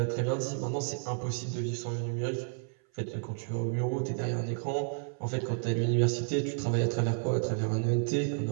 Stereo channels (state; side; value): silent; left; 57 dB below the other